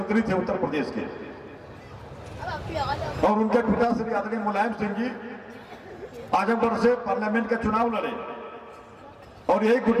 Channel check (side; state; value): both; identical; correlation 1.00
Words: थे उत्तर प्रदेश के, और उनके पिता श्री आदरणीय मुलायम सिंह जी आजमगढ़ से पार्लियामेंट का चुनाव लड़े, और यही